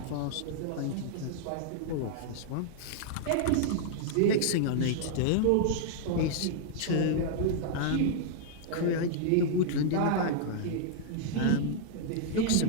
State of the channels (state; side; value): different; both; correlation -0.01